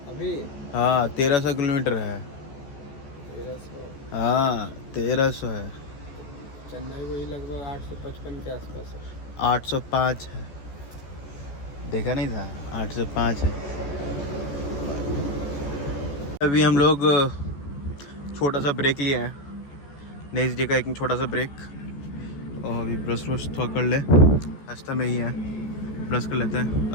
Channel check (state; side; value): late; right; 14 ms